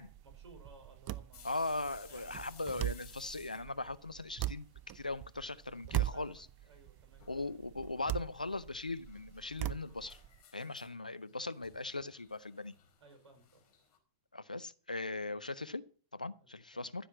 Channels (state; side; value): inverted; both; correlation -0.42